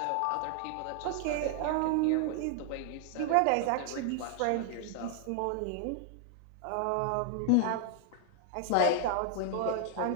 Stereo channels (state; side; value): different; both; correlation 0.00